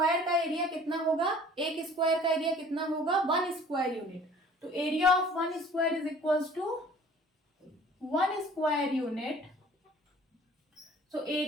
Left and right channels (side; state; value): both; normal; correlation 0.50